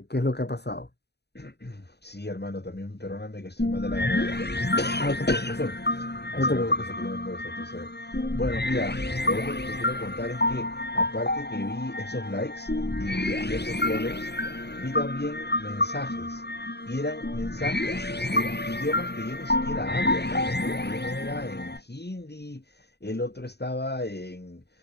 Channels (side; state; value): right; late; 0.48 ms